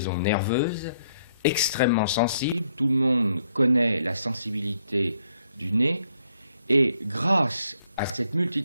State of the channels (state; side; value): inverted; both; correlation -0.71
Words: nerveuses extrêmement sensibles. Tout le monde connaît la sensibilité du nez, et grâce à cette